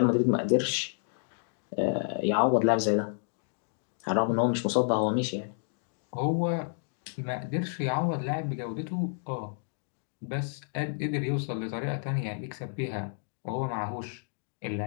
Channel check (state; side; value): silent; right; digital silence